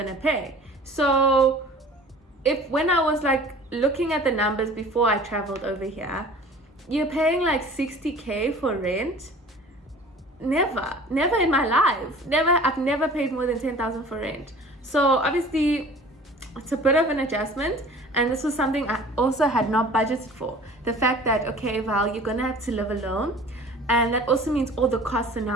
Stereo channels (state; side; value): normal; both; correlation 0.45